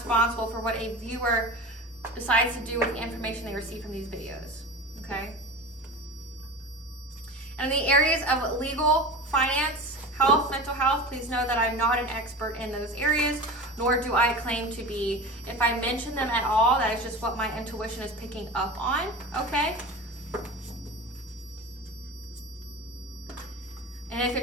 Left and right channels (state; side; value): normal; both; correlation 0.31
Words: for what a viewer decides to do with the information they receive from these videos. Okay? And in the areas of legal, finance, health, mental health, please know that I'm not an expert in those areas, nor do I claim to be. If I mention them at all, that is just what my intuition is picking up on, okay? And if